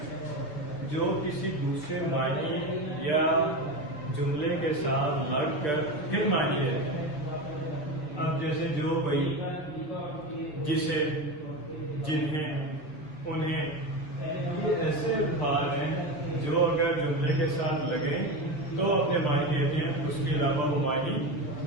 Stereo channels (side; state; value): right; late; 6.6 ms